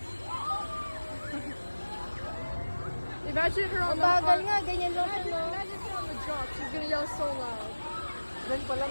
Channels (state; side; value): inverted; both; correlation -1.00